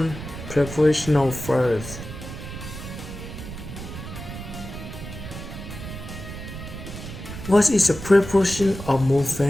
prepositional phrase. What is a preposition of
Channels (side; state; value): right; noise; rumble, 10 dB below the sound